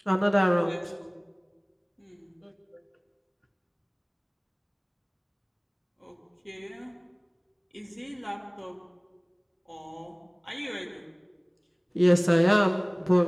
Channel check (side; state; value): both; identical; correlation 1.00